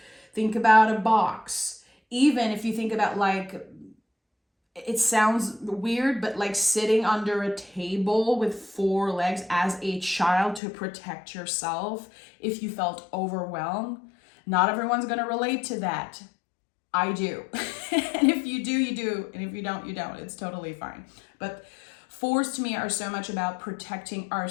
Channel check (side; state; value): right; drops out; at 10.6 s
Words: Think about a box. Even if you think about, like, it sounds weird, but like sitting under a table with four legs as a child to protect yourself if you felt overwhelmed. Not everyone's going to relate to that. I do. And if you do, you do. And if you don't, you don't. It's totally fine. But fours to me are so much about protecting